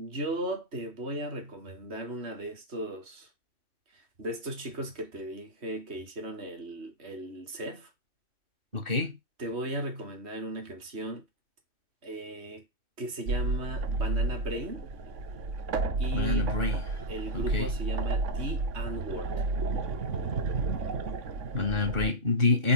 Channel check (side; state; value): left; late; 3.1 ms